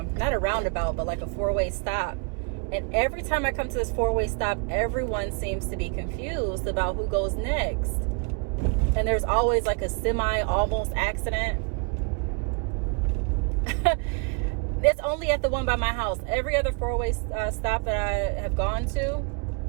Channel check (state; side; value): quieter; left; 33.7 dB